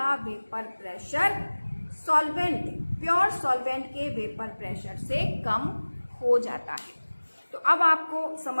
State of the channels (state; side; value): inverted; both; correlation -1.00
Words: vapour pressure solvent, pure solvent के वेपर प्रेशर से कम हो जाता है। तो अब आपको